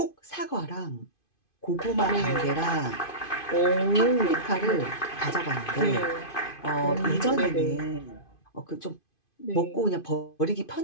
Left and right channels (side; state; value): right; late; 2.5 ms